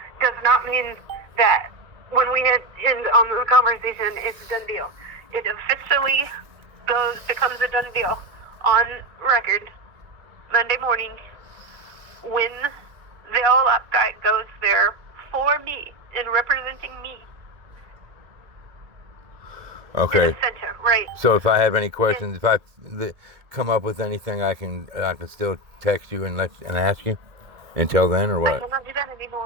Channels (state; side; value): late; left; 2.3 ms